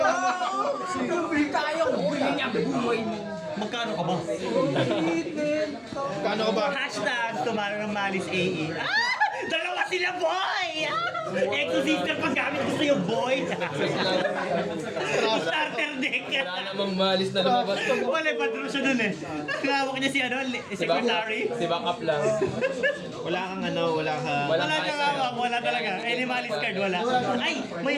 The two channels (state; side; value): identical; both; correlation 1.00